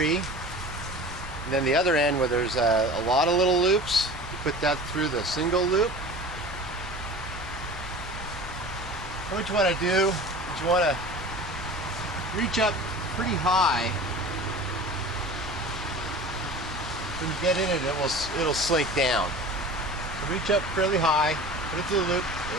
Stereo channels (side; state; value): left; noise; rumble, 14 dB below the sound